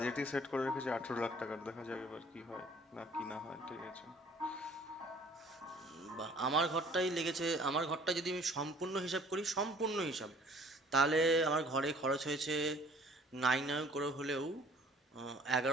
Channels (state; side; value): normal; both; correlation 0.54